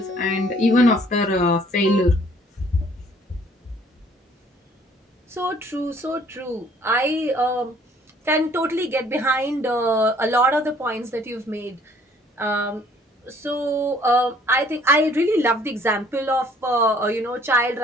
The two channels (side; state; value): both; normal; correlation 0.58